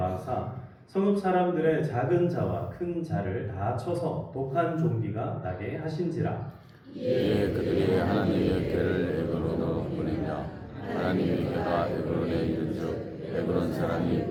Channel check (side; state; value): both; identical; correlation 1.00